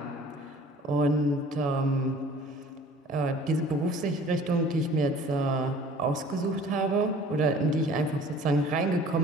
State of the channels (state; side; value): normal; both; correlation 0.49